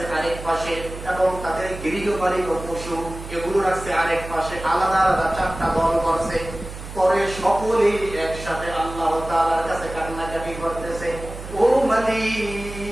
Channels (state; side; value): noise; right; hum, 11 dB below the sound